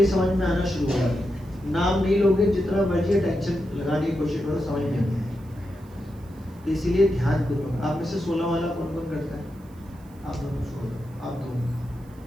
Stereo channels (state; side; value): noise; right; hiss, 30 dB below the sound